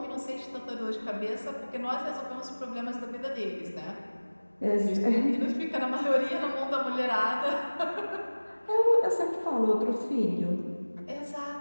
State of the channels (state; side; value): inverted; both; correlation -1.00